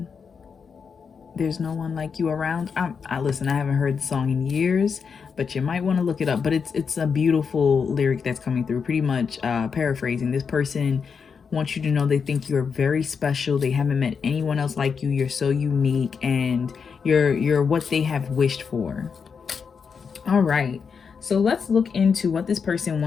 there's no one like you around. I listen, I haven't heard the song in years, but you might want to look it up. But it's a beautiful lyric that's coming through. Pretty much paraphrasing, this person wants you to know they think you're very special. They haven't met anyone else like you. You're so unique, and you're what they have wished for. All right, so let's look into what this person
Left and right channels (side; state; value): right; quieter; 6.0 dB